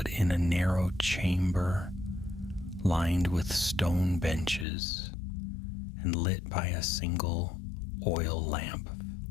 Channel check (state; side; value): drops out; right; at 4.7 s